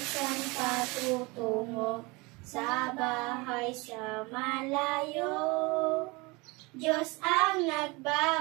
patutungo, sa bahay sa malayo, Diyos ang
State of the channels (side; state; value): left; quieter; 25.8 dB